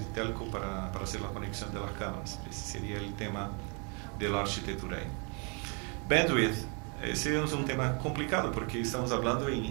telco para hacer la conexión de las cámaras. Ese sería el tema de la arquitectura ahí. Bandwidth, ese es un tema complicado porque estamos hablando en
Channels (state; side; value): quieter; left; 35.1 dB